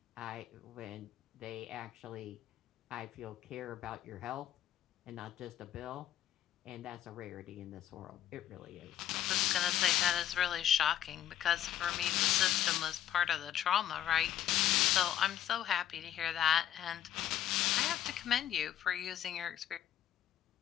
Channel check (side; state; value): right; quieter; 11.1 dB